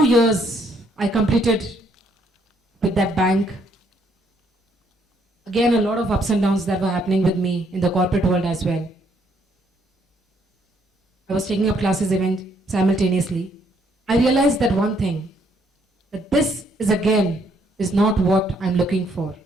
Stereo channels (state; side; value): normal; both; correlation 0.69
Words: years I completed with that bank. Again, a lot of ups and downs that were happening with me in the corporate world as well. I was taking up classes even simultaneously. I realized that one thing, that this is not what I'm looking for.